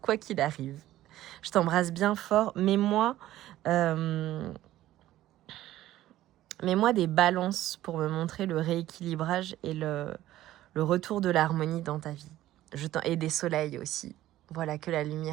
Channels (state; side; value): quieter; left; 14.4 dB